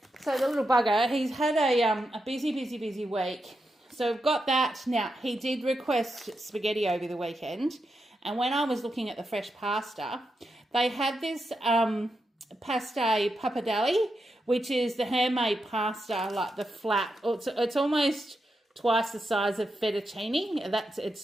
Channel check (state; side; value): normal; both; correlation 0.86